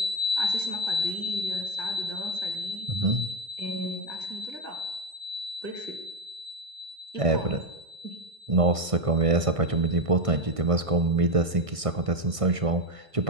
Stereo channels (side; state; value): left; late; 1.6 ms